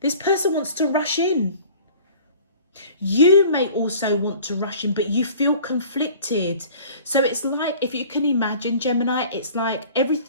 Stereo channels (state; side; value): inverted; both; correlation -0.47